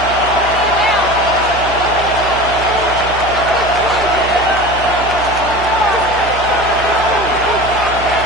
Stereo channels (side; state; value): right; noise; hum, 10 dB below the sound